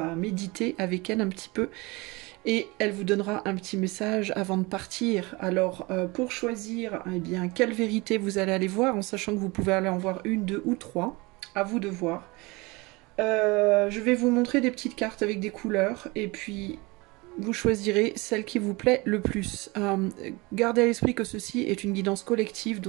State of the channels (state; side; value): quieter; left; 24.7 dB